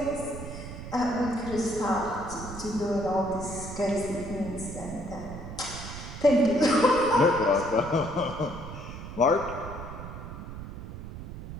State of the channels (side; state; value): right; noise; rumble, 10 dB below the sound